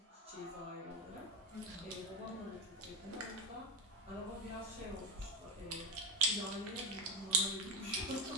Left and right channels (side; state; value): both; normal; correlation 0.13